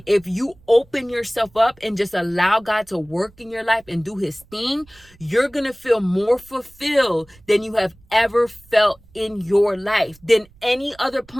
if you open yourself up and just allow God to work in your life and do his thing, you're going to feel more fulfilled than you have ever felt in your life, than any other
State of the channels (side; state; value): right; noise; rumble, 28 dB below the sound